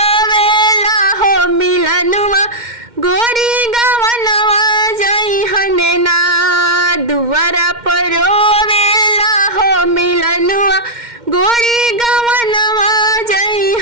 हो मिलनुआ गोरी गवनवा जइहने ना। दुआरा पर रोवेला हो मिलनुआ गोरी गवनवा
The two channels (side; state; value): left; late; 2.1 ms